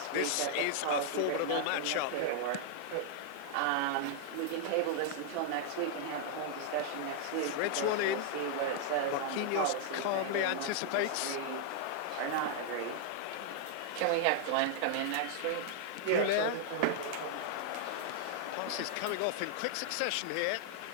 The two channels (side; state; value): both; different; correlation 0.00